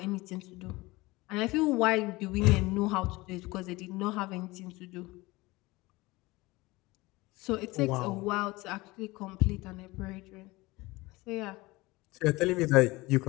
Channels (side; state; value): right; quieter; 21.5 dB